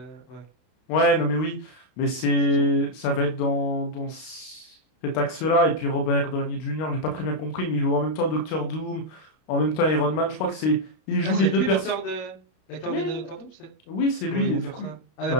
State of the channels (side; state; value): right; late; 32 ms